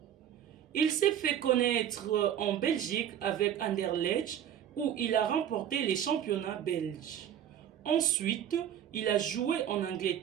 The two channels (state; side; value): quieter; left; 10.0 dB